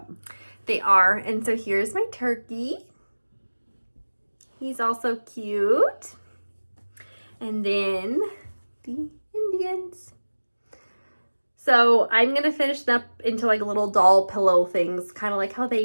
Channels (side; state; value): both; inverted; correlation -1.00